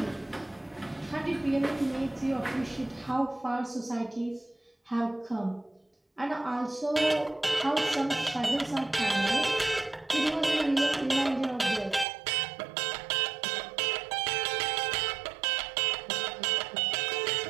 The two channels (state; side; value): drops out; left; at 12.1 s